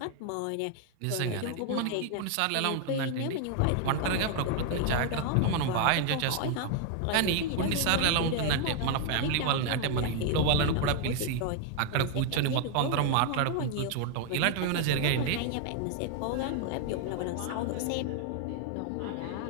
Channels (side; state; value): both; different; correlation 0.00